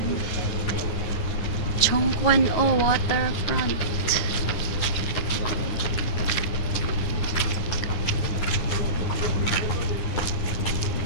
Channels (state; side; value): late; right; 9.7 ms